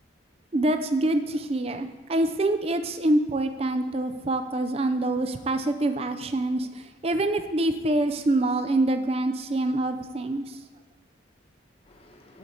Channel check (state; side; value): normal; both; correlation 0.66